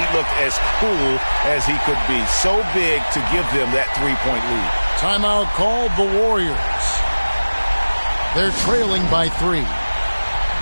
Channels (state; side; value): inverted; both; correlation -1.00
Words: looked as cool as he could be. So big to give them that 3-point lead. Timeout called the Warriors. They're trailing by 3.